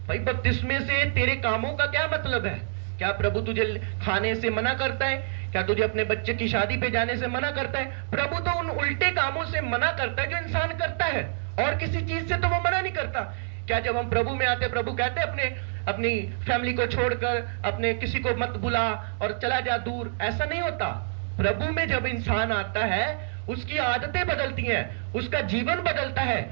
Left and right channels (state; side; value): silent; left; digital silence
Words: भाई बपतिस्मे से तेरे कामों का क्या मतलब है? क्या प्रभु तुझे खाने से मना करता है? क्या तुझे अपने बच्चे की शादी पे जाने से मना करता है? प्रभु तो उन उल्टे कामों से मना करता है जो इंसान करता है, और किसी चीज से तो वो मना नहीं करता। क्या जब हम प्रभु में आते, प्रभु कहते अपनी फैमिली को छोड़कर अपने किसी को मत बुला और चला जा दूर? ऐसा नहीं होता। प्रभु में जब इंसान आता है उसकी आदतें बदलती हैं, उसका जीवन बदलता है,